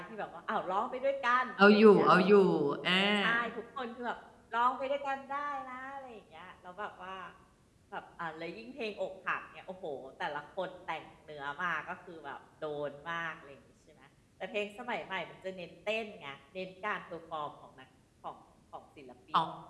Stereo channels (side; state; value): both; identical; correlation 1.00